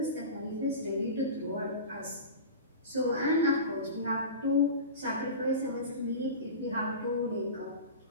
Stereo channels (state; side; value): inverted; both; correlation -0.31